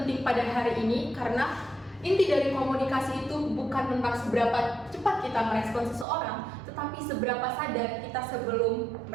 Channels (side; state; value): left; drops out; at 6.1 s